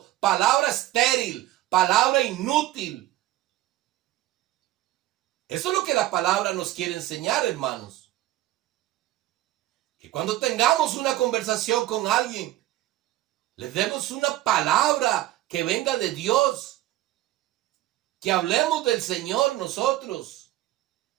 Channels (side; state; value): left; quieter; 15.1 dB